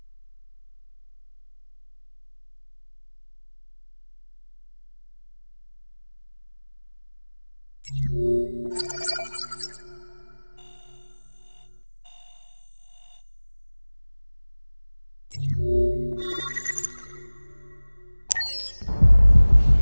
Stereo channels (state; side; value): inverted; both; correlation -1.00